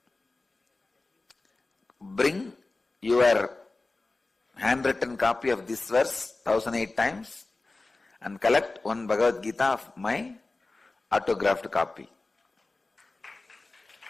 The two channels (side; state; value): right; quieter; 3.3 dB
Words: Bring your handwritten copy of this verse 1008 times and collect one Bhagavad Gita of my autographed copy.